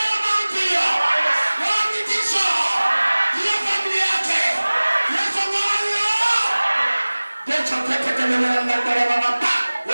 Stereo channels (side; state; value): both; inverted; correlation -1.00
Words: hiyo mauti hiyo. Ngoa mitisho. Hiyo familia yake. Yesu ngoa hiyo. Yesu teke kelele na ndarema mapa.